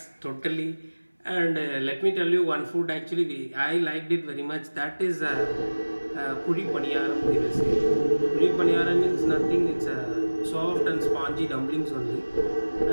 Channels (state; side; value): inverted; both; correlation -1.00